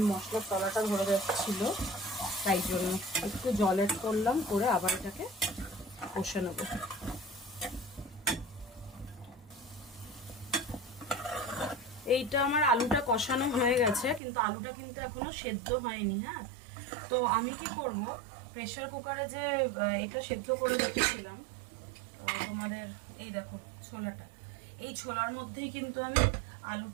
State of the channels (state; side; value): drops out; left; at 14.2 s